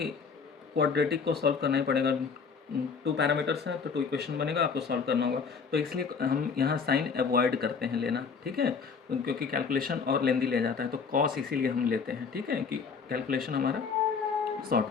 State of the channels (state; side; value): quieter; right; 5.6 dB